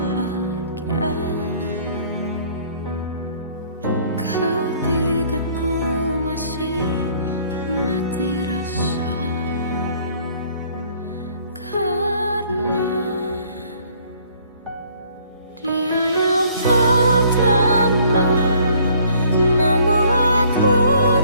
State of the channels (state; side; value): inverted; both; correlation -0.59